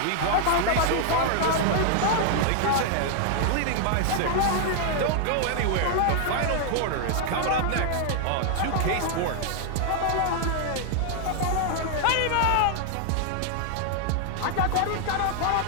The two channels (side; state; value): both; different; correlation 0.00